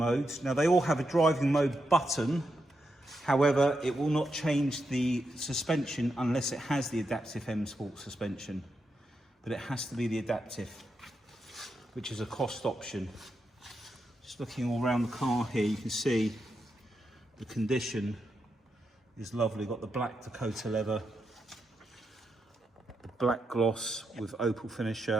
Now they all have a driving mode button. However, it will not change the suspension unless it has the adaptive M Sport suspension. But it has to be the adaptive, which is a cost option. Just looking all around the car here, you can see the condition is lovely. Got the black Dakota leather, the black gloss with opal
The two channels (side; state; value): both; normal; correlation 0.84